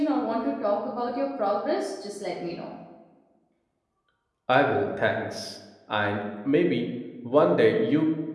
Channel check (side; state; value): both; identical; correlation 1.00